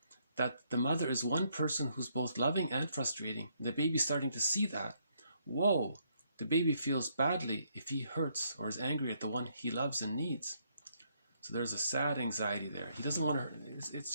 that the mother is one person who's both loving and frustrating, the baby's starting to see that, whoa, the baby feels badly if he hurts or is angry at the one he loves and needs. So there's a sad anxiety there. He doesn't want to hurt.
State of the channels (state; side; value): inverted; both; correlation -0.73